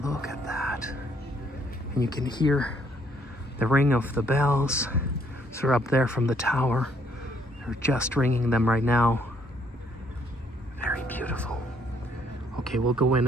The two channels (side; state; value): both; normal; correlation 0.67